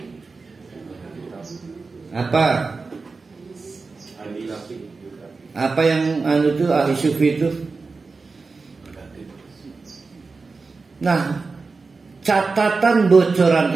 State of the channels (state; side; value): quieter; left; 4.2 dB